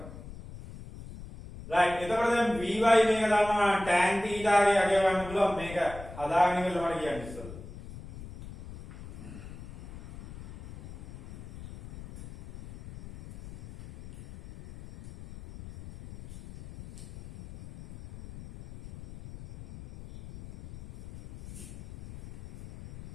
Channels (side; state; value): left; noise; rumble, 15 dB below the sound